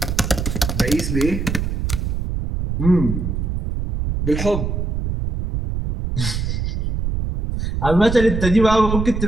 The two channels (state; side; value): noise; right; rumble, 2 dB below the sound